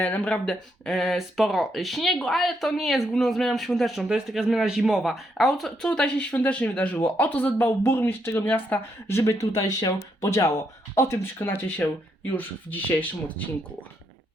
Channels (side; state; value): both; normal; correlation 0.77